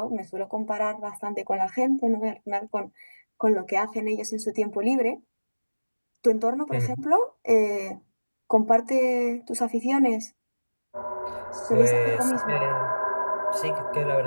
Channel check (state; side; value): inverted; both; correlation -1.00